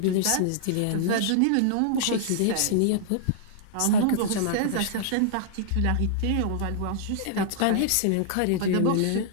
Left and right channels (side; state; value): both; different; correlation -0.01